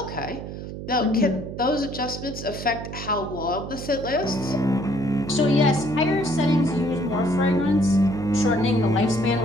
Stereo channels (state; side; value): noise; right; hum, 9 dB below the sound